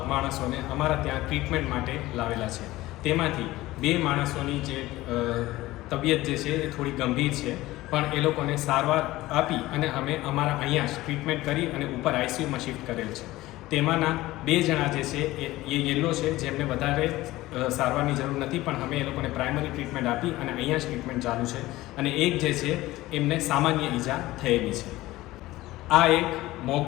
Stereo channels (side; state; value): right; quieter; 17.6 dB